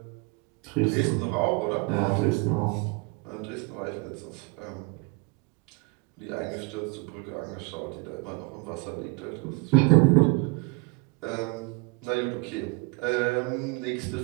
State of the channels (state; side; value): quieter; left; 28.6 dB